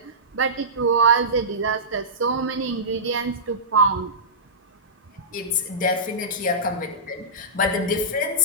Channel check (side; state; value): both; normal; correlation -0.18